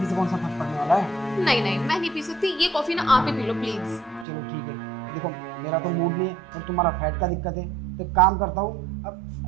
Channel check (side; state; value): left; drops out; at 4.2 s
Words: से कौन सा फर्क पड़ने वाला है? नहीं, मैं नहीं पी सकती, ये कॉफी ना आप ही पी लो प्लीज। चलो ठीक है, देखो मेरा तो मूड नहीं है और तुम्हारा फैट का दिक्कत है, तो एक काम करता हूँ अब